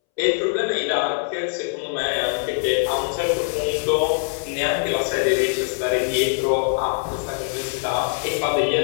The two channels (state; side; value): silent; right; 64 dB below the other